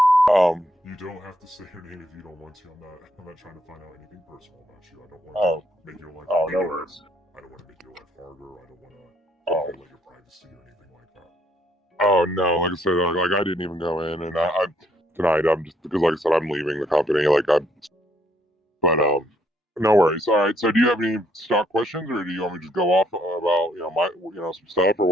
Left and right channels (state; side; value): normal; both; correlation 0.69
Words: You don't have to say your name if you don't want to. I'm not trying to find out anything personal about you. I don't want Oh, to make your life. oh, no worries. I don't want to make your life harder. I don't want to Oh, violate your privacy or anything like that. oh no. Like I said, like I didn't even go in, and I tonight I'm just because like I said I'm leaving the company. But no worries. All right. So do you have any stock questions, or do you want me to just go off about my some stuff or